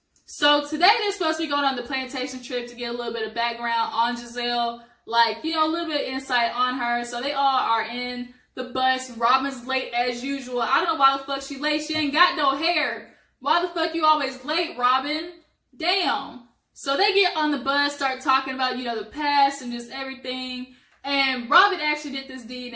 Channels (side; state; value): both; identical; correlation 1.00